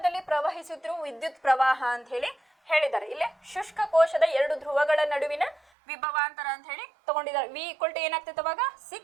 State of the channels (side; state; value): left; drops out; at 5.6 s